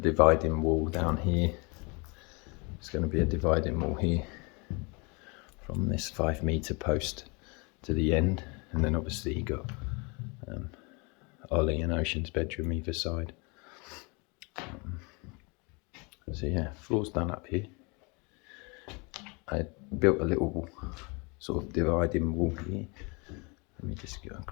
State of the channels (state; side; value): quieter; right; 30.0 dB